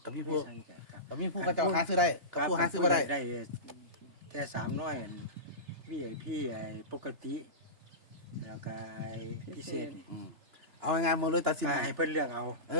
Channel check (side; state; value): left; late; 2.9 ms